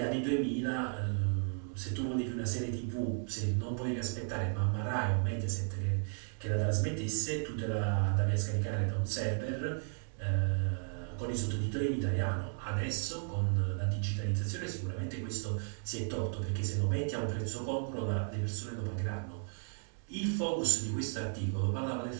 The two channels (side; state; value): left; silent; 55 dB below the other